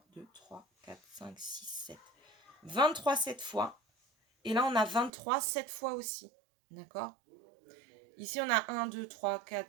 2, 3, 4, 5, 6, 7. 23, 7 fois. Et là, on a 23, 7 fois aussi. D'accord? Ici, on a 1, 2, 3,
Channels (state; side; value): drops out; left; at 5.1 s